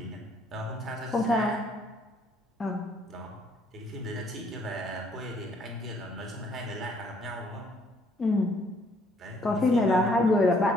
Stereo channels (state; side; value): normal; both; correlation 0.65